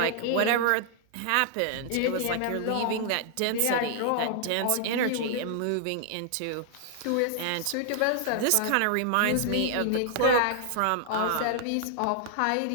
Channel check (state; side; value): different; both; correlation -0.01